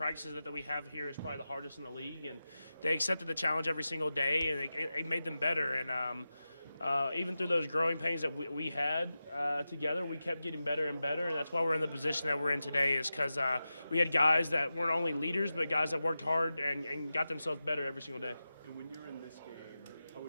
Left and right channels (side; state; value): both; inverted; correlation -0.93